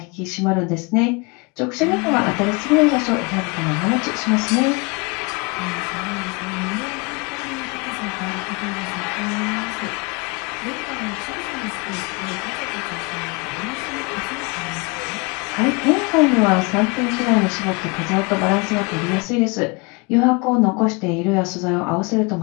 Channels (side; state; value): right; quieter; 29.1 dB